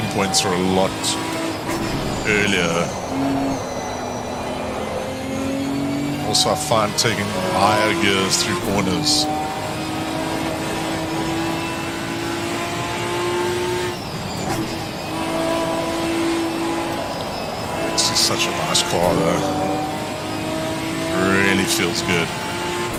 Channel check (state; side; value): identical; both; correlation 1.00